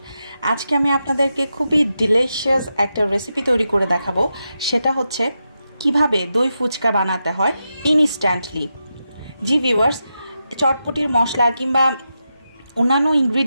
আজকে আমি আপনাদেরকে খুবই ডিলিশিয়াস একটা রেসিপি তৈরি করে দেখাবো। সেটা হচ্ছে কিভাবে দই ফুচকা বানাতে হয় ইনস্ট্যান্টলি। জি ভিউয়ার্স, চটপটির মশলা কিংবা অন্যান্য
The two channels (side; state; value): both; inverted; correlation -0.88